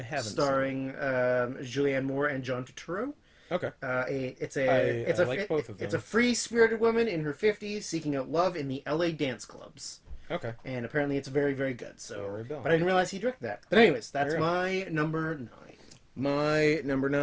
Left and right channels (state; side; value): identical; both; correlation 1.00